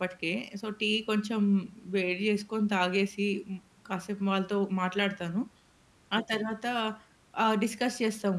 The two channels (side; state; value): both; identical; correlation 1.00